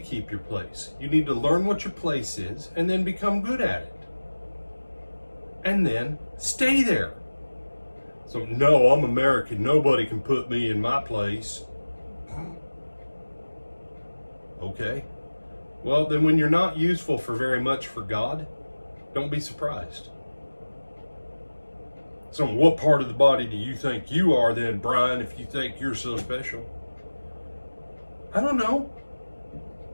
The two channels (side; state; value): both; inverted; correlation -1.00